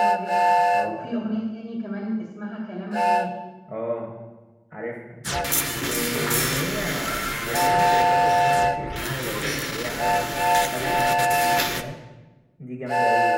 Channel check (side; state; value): both; identical; correlation 1.00